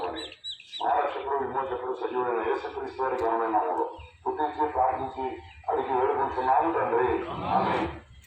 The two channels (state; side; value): identical; both; correlation 1.00